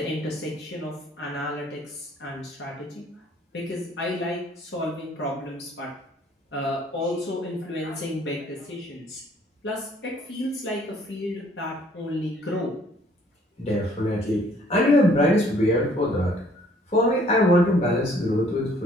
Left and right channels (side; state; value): both; normal; correlation 0.60